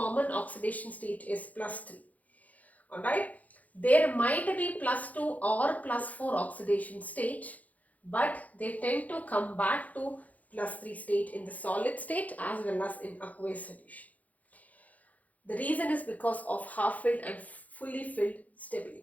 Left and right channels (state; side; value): late; right; 0.075 ms